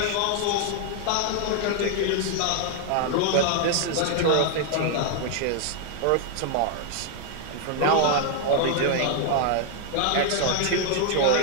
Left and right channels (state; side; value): different; both; correlation 0.00